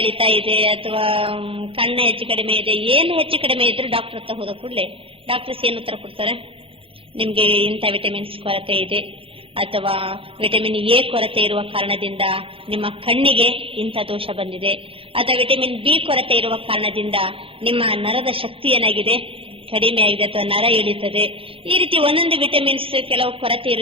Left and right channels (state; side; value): late; left; 0.27 ms